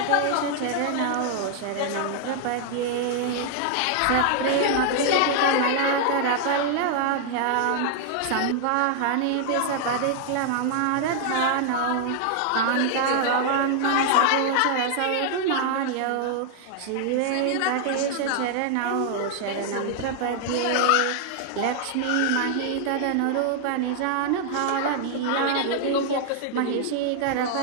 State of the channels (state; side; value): different; both; correlation 0.00